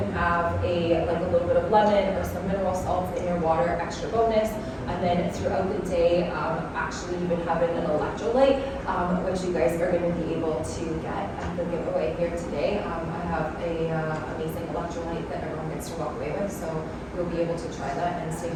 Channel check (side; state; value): both; identical; correlation 1.00